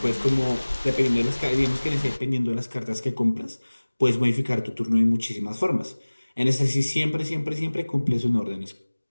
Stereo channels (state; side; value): inverted; both; correlation -1.00